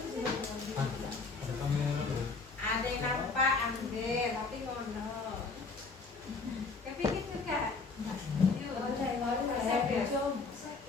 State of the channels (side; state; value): right; quieter; 4.2 dB